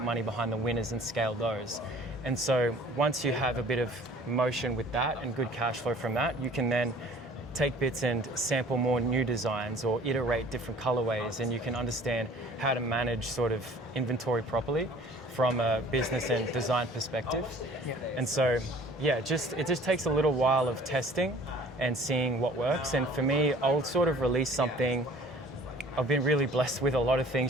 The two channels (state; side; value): normal; both; correlation 0.50